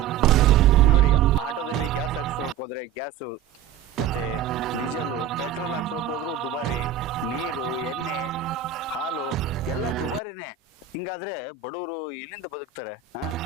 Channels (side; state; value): left; quieter; 8.9 dB